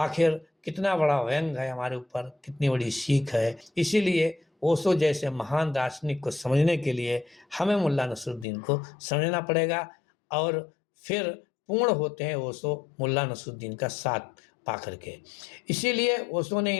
कितना बड़ा व्यंग है हमारे ऊपर, कितनी बड़ी सीख है। इसीलिए ओशो जैसे महान दार्शनिक को समझने के लिए हमें मुल्ला नसरुद्दीन को समझना पड़ेगा, और फिर पूर्ण होते हैं ओशो मुल्ला नसरुद्दीन का साथ पा करके। इसीलिए ओशो ने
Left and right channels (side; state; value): right; drops out; at 8.5 s